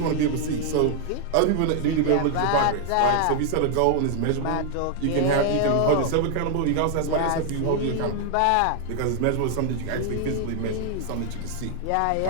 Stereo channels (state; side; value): different; both; correlation 0.00